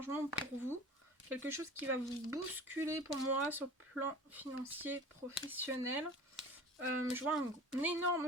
pour vous, quelque chose qui va vous bousculer pour moi sur le plan financier professionnel. Je vois un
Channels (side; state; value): both; normal; correlation 0.39